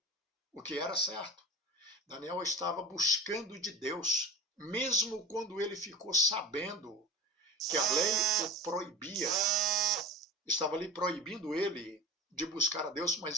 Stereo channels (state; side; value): normal; both; correlation 0.34